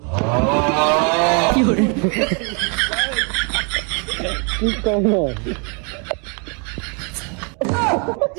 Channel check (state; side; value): quieter; left; 36.7 dB